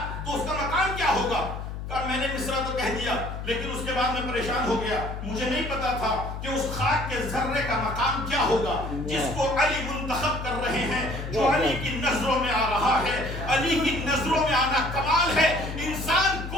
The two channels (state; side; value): noise; left; hum, 7 dB below the sound